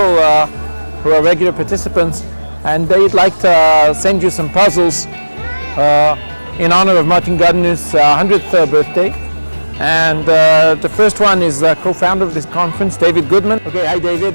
who are regular participants, and they'd like to send you some puzzles in honor of Martin Gardner's 100th birthday. And the first one is co-founder of this conference, David Goodman. Okay, hi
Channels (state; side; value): inverted; both; correlation -1.00